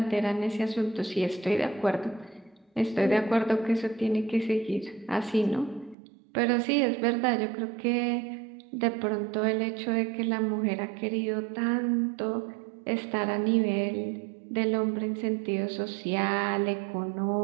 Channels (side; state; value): left; drops out; at 6.0 s